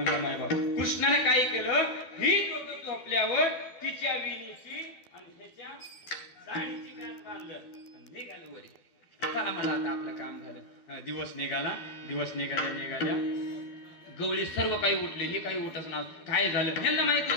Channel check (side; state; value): right; late; 12 ms